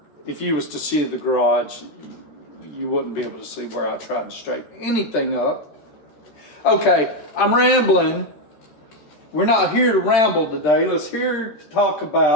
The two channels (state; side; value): late; right; 13 ms